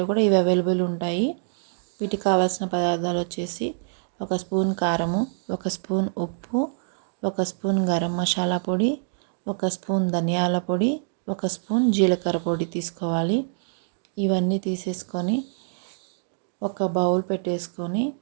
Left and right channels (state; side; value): silent; left; digital silence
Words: కూడా ఇవి అవైలబుల్ ఉంటాయి. వీటికి కావాల్సిన పదార్థాలు వచ్చేసి ఒక స్పూన్ కారము, ఒక స్పూన్ ఉప్పు, ఒక స్పూన్ గరం మసాలా పొడి, ఒక స్పూన్ ధనియాల పొడి, ఒక స్పూన్ జీలకర్ర పొడి తీసుకోవాలి. ఇవన్నీ తీసేసుకొని ఒక బౌల్ పెట్టేసుకొని